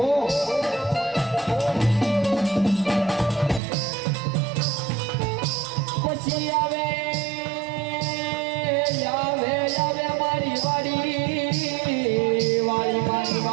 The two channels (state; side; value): drops out; left; at 3.6 s